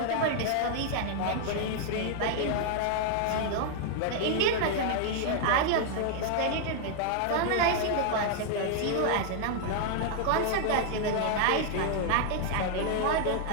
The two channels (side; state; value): both; different; correlation 0.00